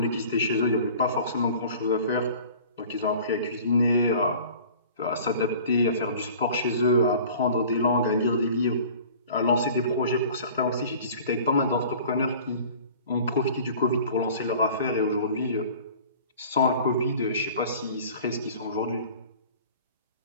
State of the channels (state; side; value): inverted; both; correlation -0.45